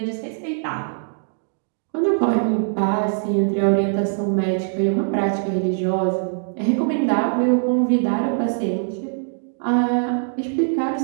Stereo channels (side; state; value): left; silent; digital silence